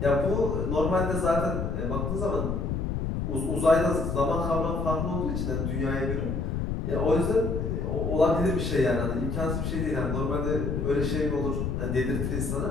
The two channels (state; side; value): noise; left; rumble, 1 dB below the sound